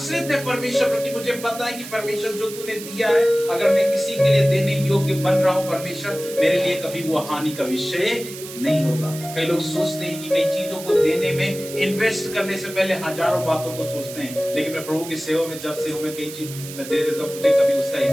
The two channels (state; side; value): noise; right; hiss, 12 dB below the sound